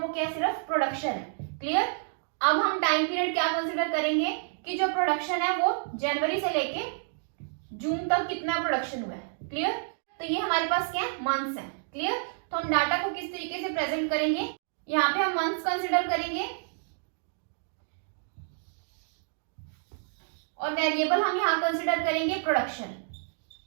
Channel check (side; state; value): left; silent; digital silence